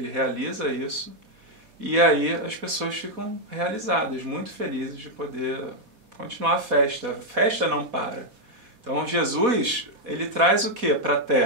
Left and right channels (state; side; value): late; left; 4.1 ms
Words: realiza isso, e aí as pessoas ficam realizadas, muito felizes de poder continuar a festa. A festa não para. Então Jesus, ele traz o que para a